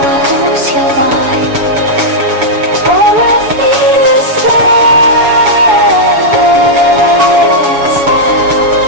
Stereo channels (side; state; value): left; late; 7.1 ms